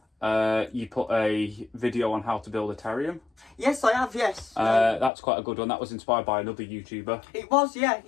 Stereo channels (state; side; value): drops out; right; at 5.1 s